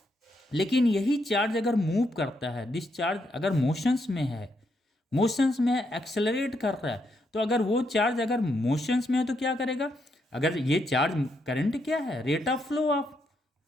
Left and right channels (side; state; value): both; normal; correlation 0.78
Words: लेकिन यही चार्ज अगर मूव करता है, दिस चार्ज अगर मोशंस में है, एक्सेलरेट कर रहा है, तो अगर वो चार्ज अगर मोशंस में है तो क्या करेगा, अगर ये चार्ज करंट क्या है, rate of flow of